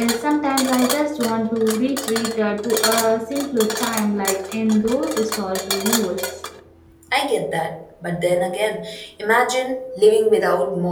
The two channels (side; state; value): both; identical; correlation 1.00